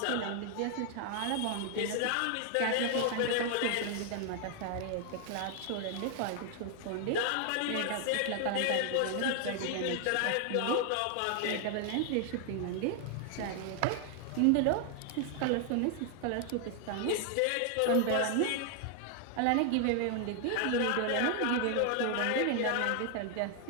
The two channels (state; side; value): different; both; correlation 0.00